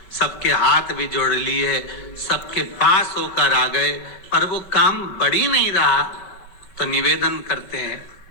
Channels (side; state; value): right; late; 5.1 ms